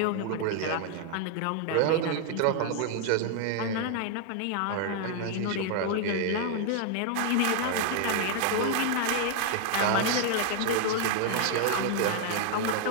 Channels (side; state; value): both; different; correlation 0.00